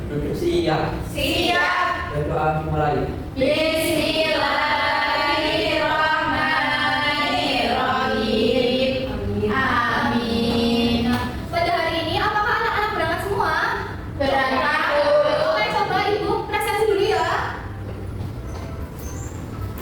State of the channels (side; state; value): both; identical; correlation 1.00